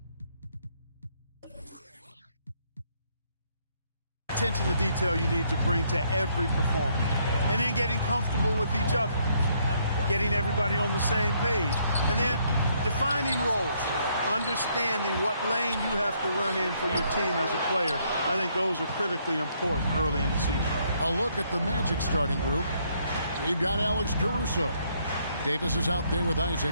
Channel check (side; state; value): both; inverted; correlation -0.70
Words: attention to detail you need to bring to every performance. And then getting comfortable with each other, getting everybody on the same page, and then defining roles. Understanding what lane you have to run in for your team as a player. I think those are critically important early in the season. A look at the Magic starting group. We've got Alex Caruso. Davis is out there with